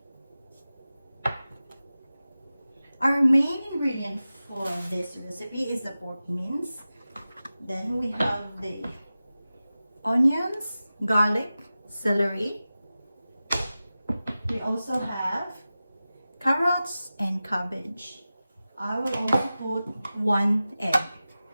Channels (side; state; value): both; inverted; correlation -0.95